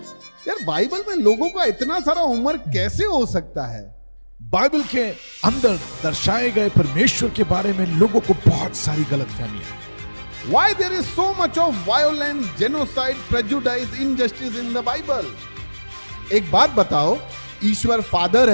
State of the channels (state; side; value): inverted; both; correlation -1.00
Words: यार बाइबल में लोगों का इतना सारा उम्र कैसे हो सकता है? बाइबल के अंदर दर्शाए गए परमेश्वर के बारे में लोगों को बहुत सारी गलतफहमियां। Why there is so much of violence, genocide, prejudice, injustice in the Bible? एक बात बताओ, ईश्वर फादर